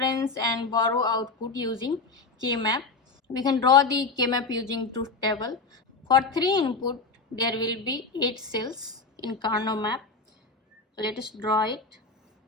and borrow output using K-map. We can draw the K-map using truth table. For 3 input there will be 8 cells in Carnot map. So let us draw it.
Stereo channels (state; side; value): quieter; right; 4.0 dB